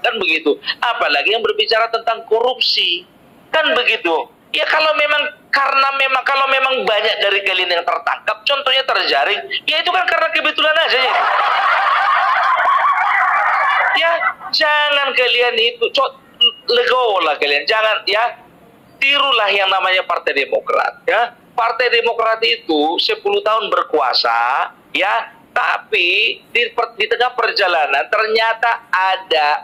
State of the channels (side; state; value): both; identical; correlation 1.00